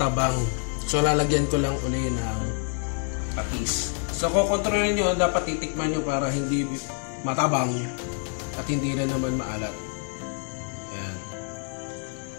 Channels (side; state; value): right; quieter; 39.2 dB